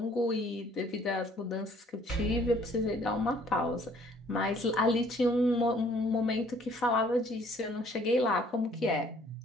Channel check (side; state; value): both; normal; correlation 0.59